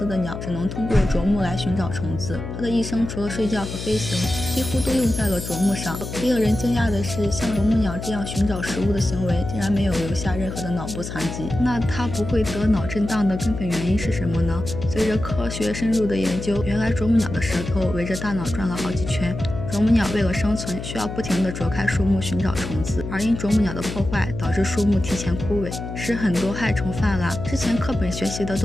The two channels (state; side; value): noise; left; hum, 7 dB below the sound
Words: 的鸟，只能通过啄木来寻找虫子。它的一生除了睡觉和飞行，几乎都用在了啄木上。令人惊讶的是，像啄木鸟这样寻找食物的行为，竟然没有留下任何的脑部残疾。那它不会得脑震荡的根本原因是什么呢？随着科学深入的研究，原来啄木鸟的舌头围着大脑转了好几圈。啄木鸟为了生存，需要不停地啄开树木寻找虫子，而因啄木鸟的破坏，导致树木提前枯萎，使很多害虫泛滥。之前课本学习的